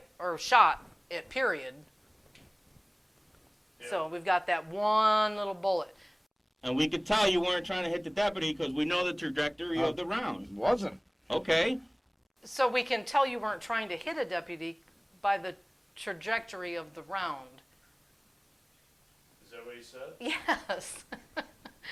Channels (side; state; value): both; identical; correlation 1.00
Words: Or shot it, period. Yeah. So we've got that one little bullet. And we could tell you weren't trying to hit the deputy because we know the trajectory of the round. Wasn't. Okay. So we can tell you weren't trying to hit a deputy by the trajectory of the round. Is that what he said? Yes.